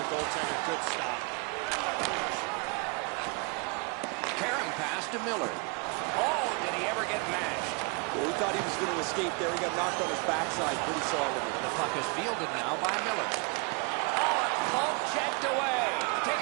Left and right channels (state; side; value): quieter; left; 31.7 dB